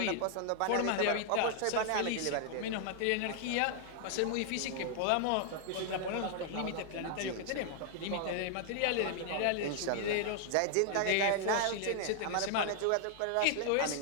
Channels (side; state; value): both; different; correlation 0.00